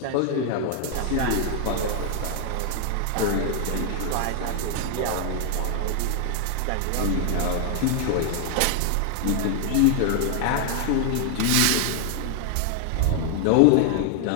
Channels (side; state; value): both; different; correlation 0.00